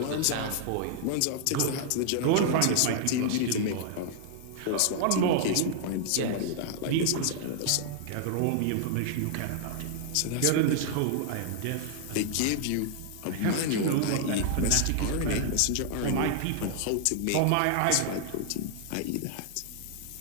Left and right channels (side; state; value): both; different; correlation 0.00